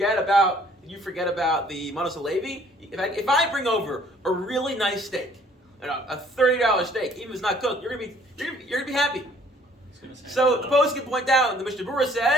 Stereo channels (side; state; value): both; normal; correlation 0.58